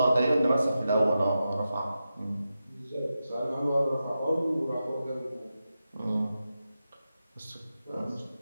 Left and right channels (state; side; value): inverted; both; correlation -0.90